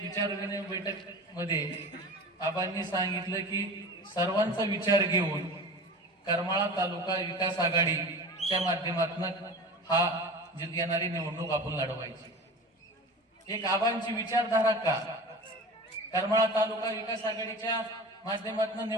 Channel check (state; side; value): normal; both; correlation 0.34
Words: विचारविनिमय बैठक मध्ये आबांनी सांगितलं की सर्वांचा विचार घेऊन करमाळा तालुका विकास आघाडीच्या माध्यमातून हा येणारी निवडणूक आपण लढवायची। एक आबांची विचारधारा का, करमाळा तालुका विकास आघाडीच्या माध्यमातून